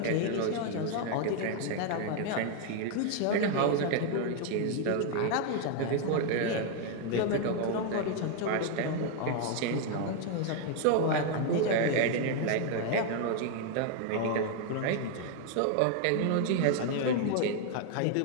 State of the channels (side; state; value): both; different; correlation 0.01